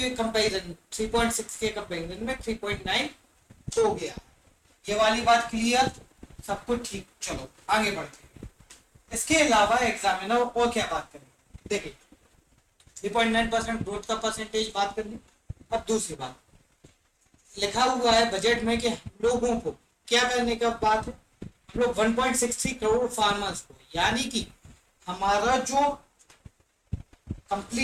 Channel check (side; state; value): both; identical; correlation 1.00